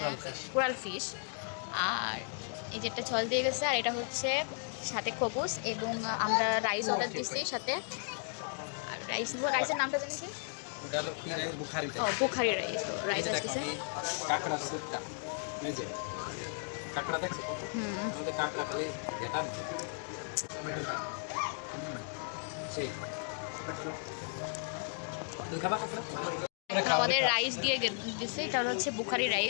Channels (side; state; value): right; silent; 54 dB below the other